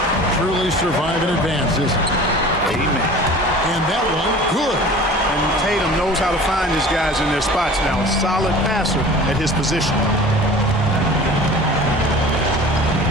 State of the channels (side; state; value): both; normal; correlation 0.42